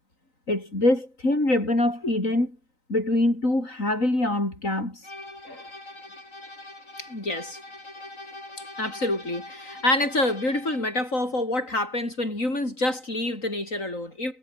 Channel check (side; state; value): right; late; 3.9 ms